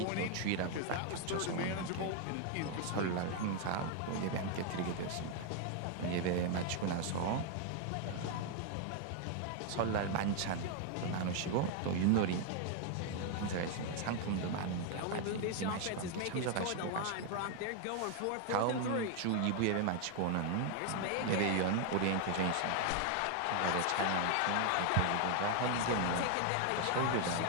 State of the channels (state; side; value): different; both; correlation 0.00